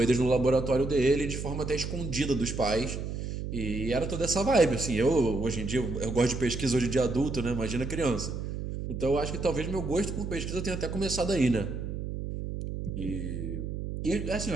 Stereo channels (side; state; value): right; noise; hum, 5 dB below the sound